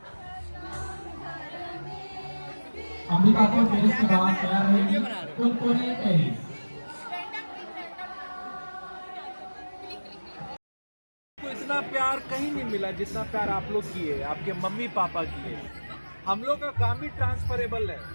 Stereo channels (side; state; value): both; inverted; correlation -1.00